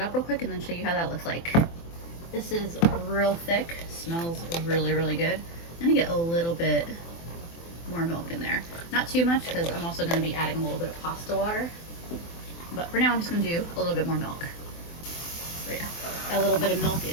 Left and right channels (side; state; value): right; late; 24 ms